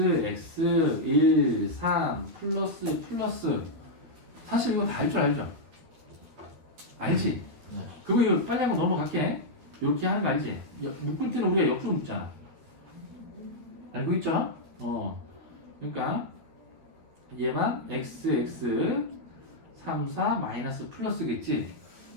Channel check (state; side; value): late; left; 13 ms